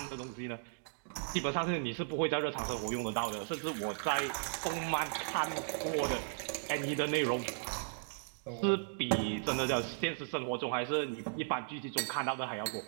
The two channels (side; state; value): left; silent; digital silence